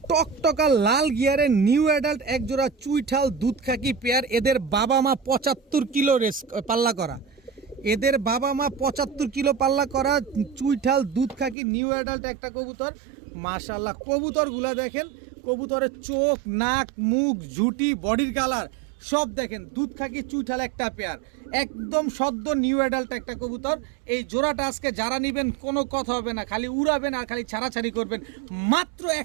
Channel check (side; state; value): left; drops out; at 11.6 s